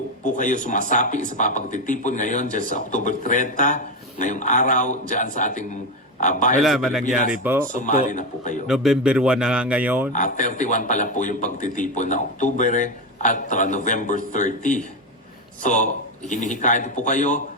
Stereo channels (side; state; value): both; normal; correlation 0.12